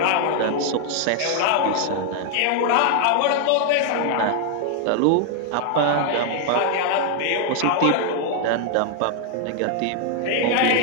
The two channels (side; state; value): both; different; correlation 0.00